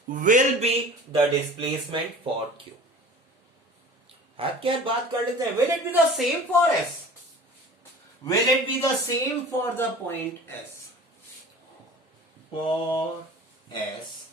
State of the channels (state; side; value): normal; both; correlation 0.41